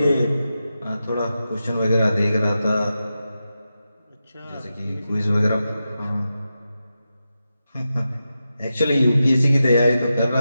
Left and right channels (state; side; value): inverted; both; correlation -0.90